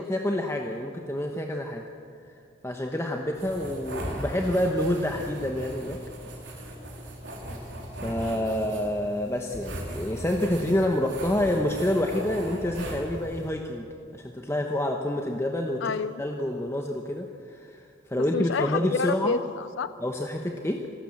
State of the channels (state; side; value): normal; both; correlation 0.65